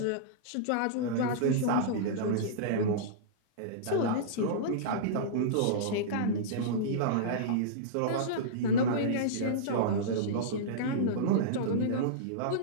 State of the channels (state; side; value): different; both; correlation -0.04